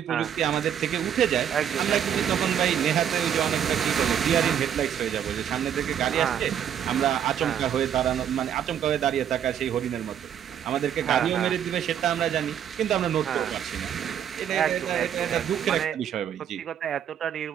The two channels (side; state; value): left; quieter; 9.3 dB